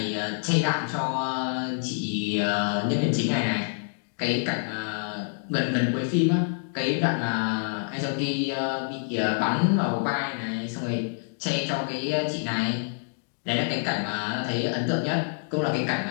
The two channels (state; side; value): silent; right; digital silence